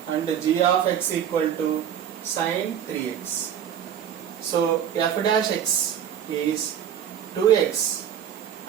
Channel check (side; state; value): left; quieter; 9.4 dB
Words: and g of x equal to sin 3x. So f dash x is 2x